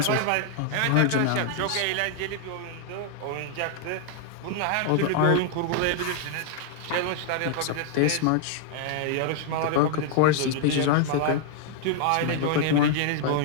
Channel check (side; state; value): both; different; correlation 0.00